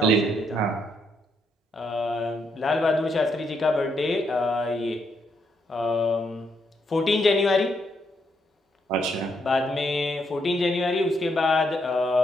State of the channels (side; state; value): both; normal; correlation 0.76